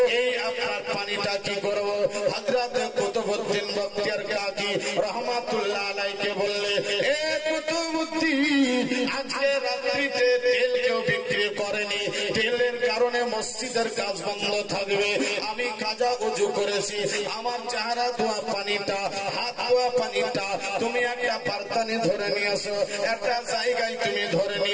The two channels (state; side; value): identical; both; correlation 1.00